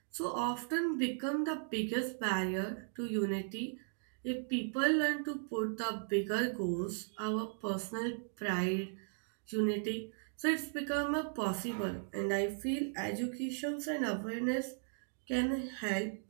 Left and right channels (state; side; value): silent; left; digital silence